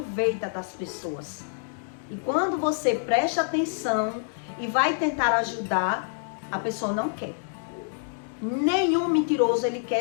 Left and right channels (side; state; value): right; silent; digital silence